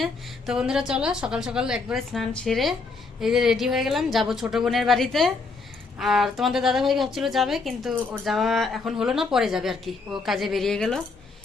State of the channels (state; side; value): quieter; right; 4.1 dB